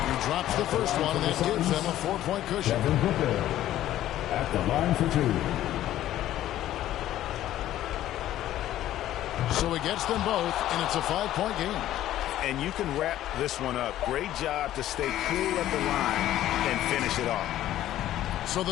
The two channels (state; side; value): quieter; right; 13.2 dB